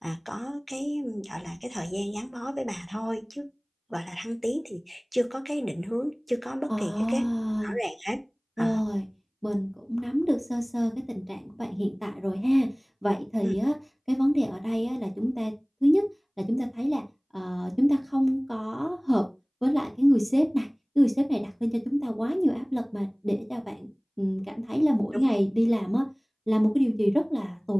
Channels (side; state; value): both; identical; correlation 1.00